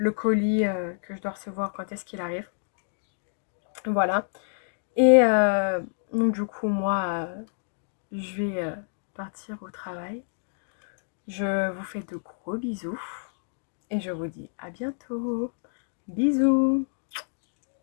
colis que je dois recevoir quand est-ce qu'il arrive. Voilà. Et donc du coup, moi, je vais partir au travail. Je vous fais de gros bisous et je vous dis à bientôt. Bisous.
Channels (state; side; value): silent; right; digital silence